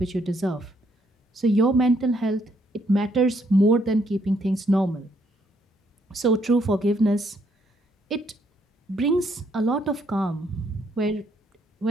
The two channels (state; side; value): normal; both; correlation 0.71